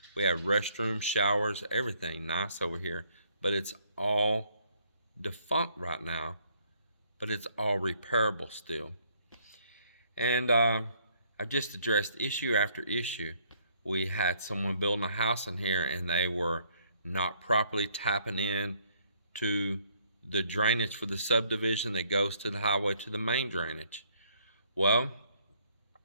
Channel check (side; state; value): both; inverted; correlation -0.66